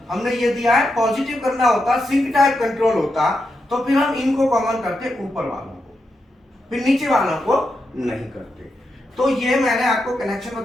हमने ये दिया है पॉजिटिव करना होता, सिंक टाइप कंट्रोल होता, तो फिर हम इनको कॉमन करते ऊपर वालों को, फिर नीचे वालों को नहीं करते। तो ये मैंने आपको कनेक्शन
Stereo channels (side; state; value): both; normal; correlation 0.85